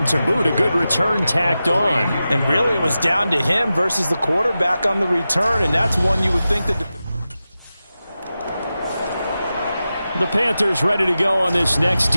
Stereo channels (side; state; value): both; inverted; correlation -0.93